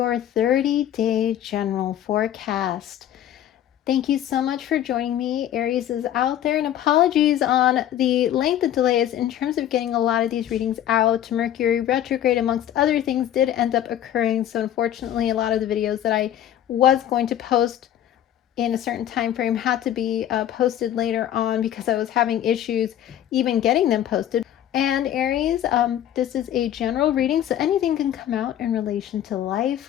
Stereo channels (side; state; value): right; quieter; 11.2 dB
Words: 30-day general forecast. Thank you so much for joining me. Aries is out there, and apologies on the length of delays in terms of getting a lot of these readings out. Mercury retrograde, amongst other things, did end up occurring, so unfortunately a lot of the videos that I was going to post in a certain time frame had to be posted later on because I was having issues even getting them posted. And Aries, this is a general reading, so anything can come out in relation to